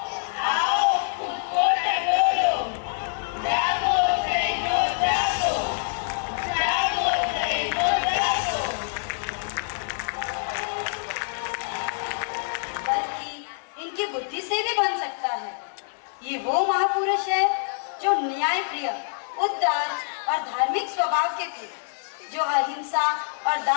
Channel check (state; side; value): silent; right; digital silence